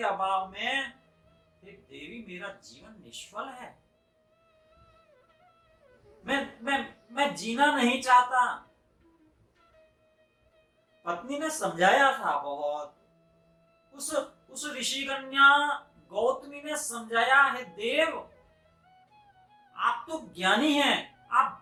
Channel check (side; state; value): both; identical; correlation 1.00